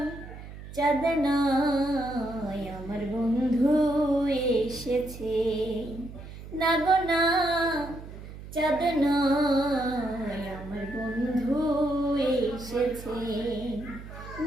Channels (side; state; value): right; noise; hum, 13 dB below the sound